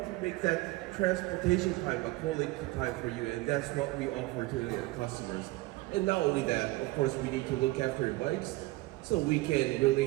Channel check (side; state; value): left; quieter; 20.4 dB